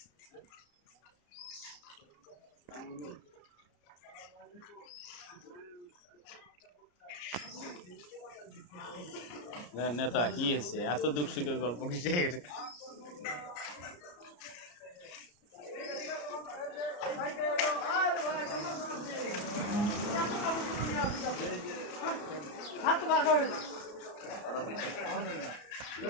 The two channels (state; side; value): late; right; 34 ms